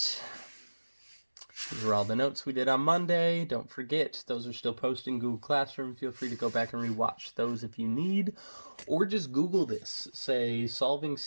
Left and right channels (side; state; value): both; inverted; correlation -1.00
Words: These are all the notes we did on Monday. Don't forget, those are still posted in Google Classroom. Feel free to go back and rewatch those if you need. Or just Google this. Say, solving